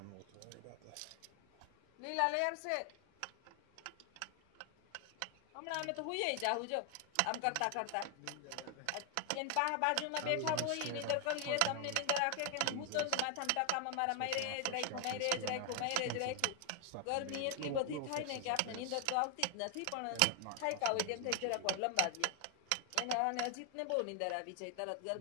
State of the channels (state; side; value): different; both; correlation 0.00